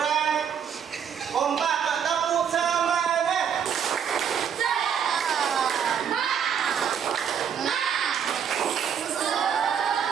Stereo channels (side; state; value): left; quieter; 7.9 dB